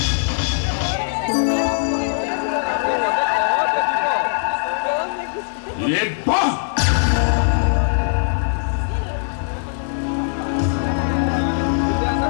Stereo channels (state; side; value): silent; right; digital silence